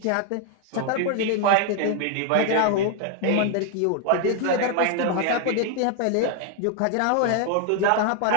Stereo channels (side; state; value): both; different; correlation 0.00